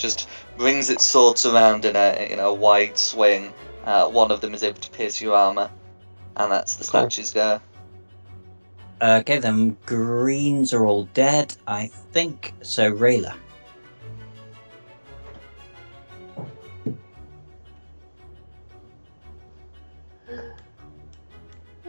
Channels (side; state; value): both; inverted; correlation -1.00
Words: brings its swords around in a wide swing. One of them is able to pierce your armor, and that's the statue's go. Okay, then greens are all dead, I think. So Rayla.